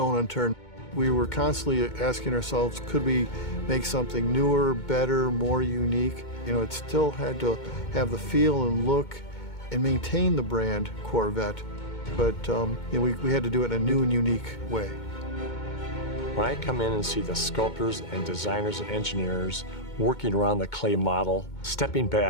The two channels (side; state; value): right; late; 2.2 ms